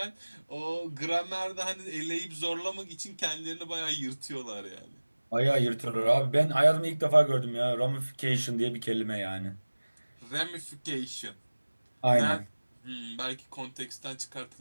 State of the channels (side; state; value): both; inverted; correlation -1.00